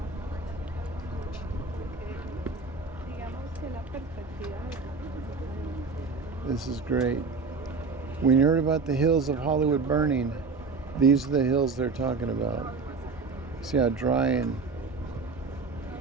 This is great. When you heard about the hills of Hollywood burning, these are the hills they're talking about. See how dry and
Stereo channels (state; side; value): quieter; left; 4.3 dB